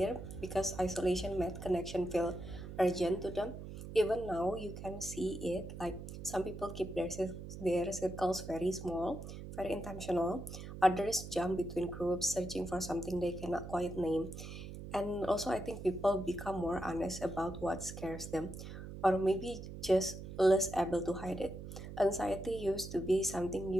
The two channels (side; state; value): right; noise; hum, 10 dB below the sound